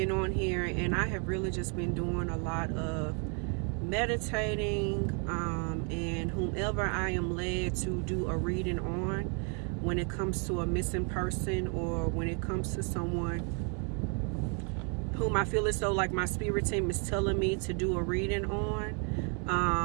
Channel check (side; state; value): left; quieter; 38.5 dB